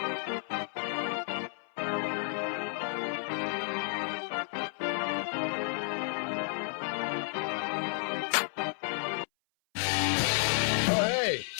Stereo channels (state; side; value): silent; right; 56 dB below the other